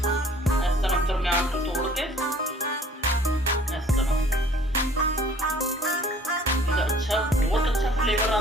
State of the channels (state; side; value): normal; both; correlation 0.53